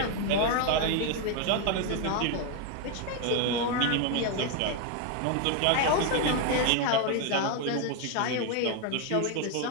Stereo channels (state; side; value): different; both; correlation 0.01